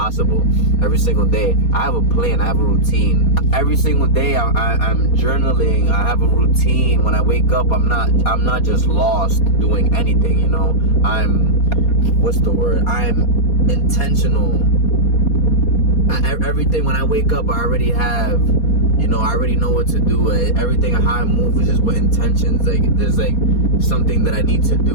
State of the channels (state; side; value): late; right; 4.2 ms